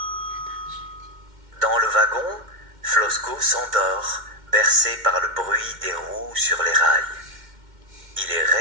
Dans le wagon, Flosko s'endort, bercé par le bruit des roues sur les rails. Il est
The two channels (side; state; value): left; late; 2.1 ms